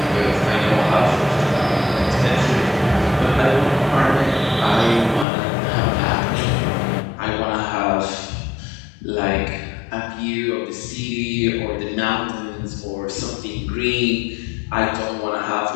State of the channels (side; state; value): right; drops out; at 5.2 s